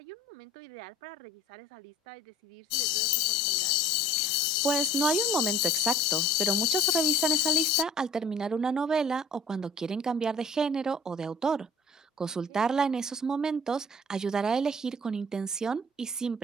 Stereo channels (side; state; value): both; normal; correlation 0.48